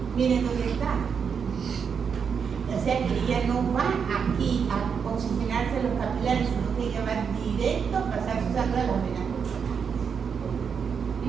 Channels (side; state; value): left; quieter; 6.6 dB